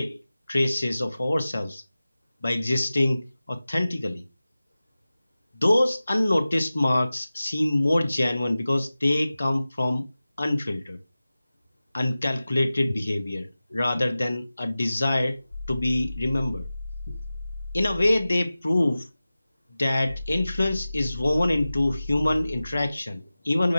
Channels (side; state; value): both; inverted; correlation -0.96